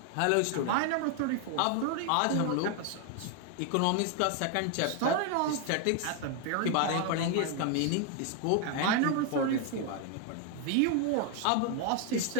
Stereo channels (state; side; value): different; both; correlation 0.01